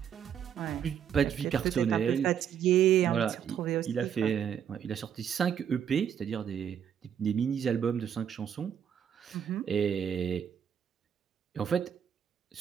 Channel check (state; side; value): quieter; left; 8.6 dB